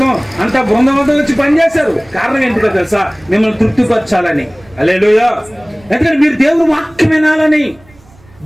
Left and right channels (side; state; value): right; noise; rumble, 27 dB below the sound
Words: అంతా బృందం అంతా వచ్చి పనిచేశారు. కారణం ఏంటిదో తెలుసా? మిమ్మల్ని తృప్తిపరచాలని. హల్లెలూయా. ఎందుకంటే మీరు దేవుని వాక్యం వినాలని,